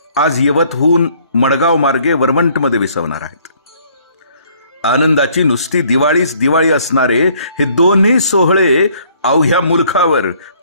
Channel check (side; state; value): both; inverted; correlation -0.61